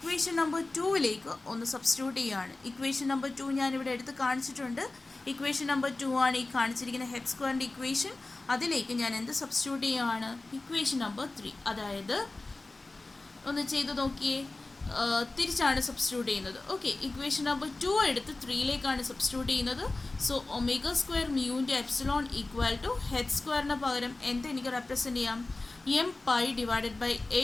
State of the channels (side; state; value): right; quieter; 3.1 dB